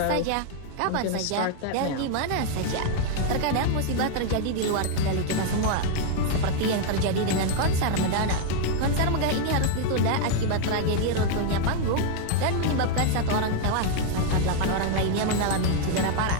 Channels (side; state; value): both; different; correlation 0.00